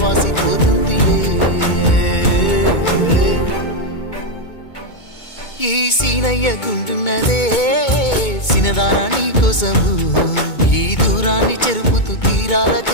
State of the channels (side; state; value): right; late; 2.2 ms